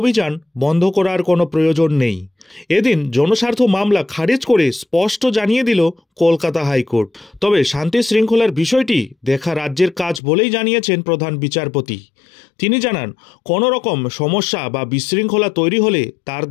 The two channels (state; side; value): drops out; right; at 10.2 s